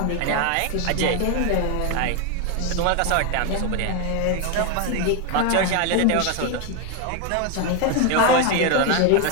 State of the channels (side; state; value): both; different; correlation 0.01